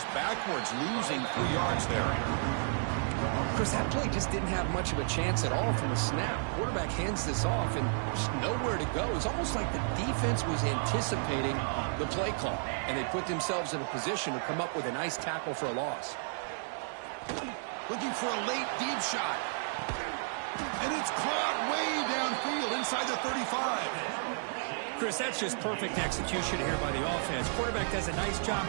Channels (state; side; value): silent; left; digital silence